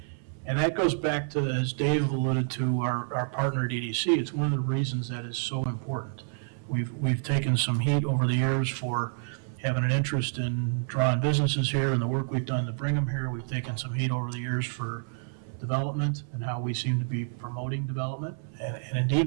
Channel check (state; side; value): silent; left; 59 dB below the other